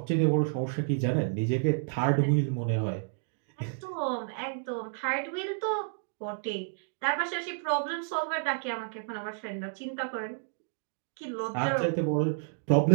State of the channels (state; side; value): silent; left; digital silence